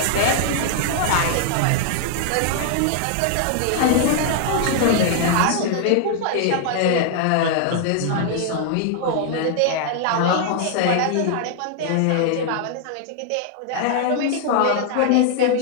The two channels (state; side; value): different; both; correlation 0.00